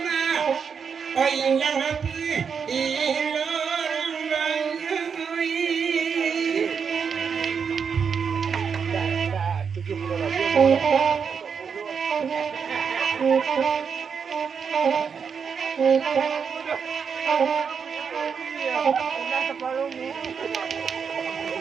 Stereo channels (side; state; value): left; quieter; 6.4 dB